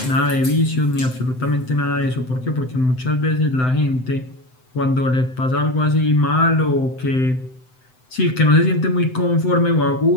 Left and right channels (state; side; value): late; right; 7.8 ms